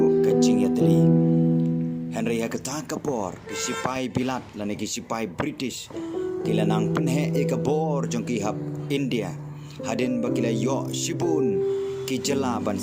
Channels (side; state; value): both; identical; correlation 1.00